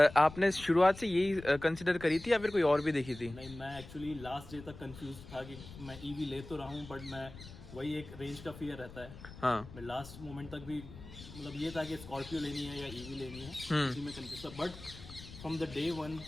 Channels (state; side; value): noise; left; rumble, 15 dB below the sound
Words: आपने शुरुआत से यही कंसिडर करी थी या फिर कोई और भी देखी थी? नहीं, मैं एक्चुअली लास्ट डे तक कंफ्यूज था कि मैं ईवी ले तो रहा हूँ, बट मैं वही एक रेंज का फियर रहता है। हाँ। मैं लास्ट मोमेंट तक भी मतलब ये था कि स्कॉर्पियो लेनी है या ईवी लेनी है, इसी में कंफ्यूज था। But from the day one